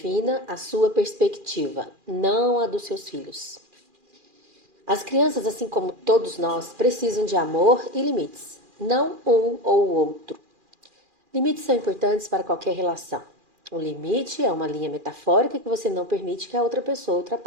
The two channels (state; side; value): late; left; 2.4 ms